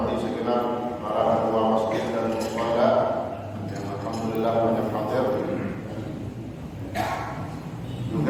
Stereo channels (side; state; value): both; identical; correlation 1.00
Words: segenap para ketua masjid dan mushola yang alhamdulillah banyak hadir.